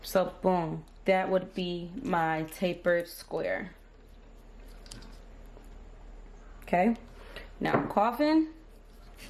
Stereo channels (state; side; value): identical; both; correlation 1.00